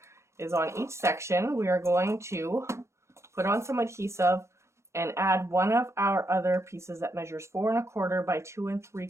is on each section, we are going to put on some adhesive and add one of our other pieces that measures 4 1/4 by 2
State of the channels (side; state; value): left; late; 0.14 ms